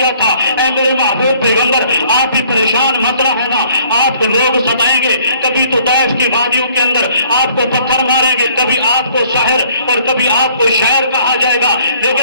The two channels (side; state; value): both; inverted; correlation -0.59